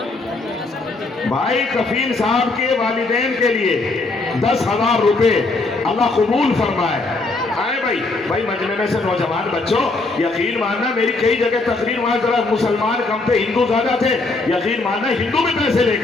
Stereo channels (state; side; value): quieter; right; 3.4 dB